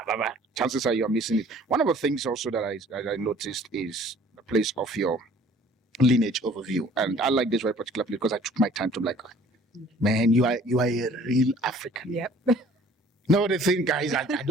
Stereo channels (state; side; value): normal; both; correlation 0.53